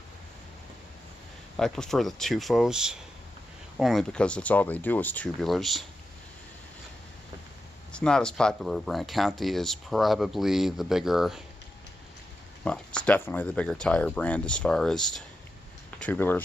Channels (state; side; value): normal; both; correlation 0.89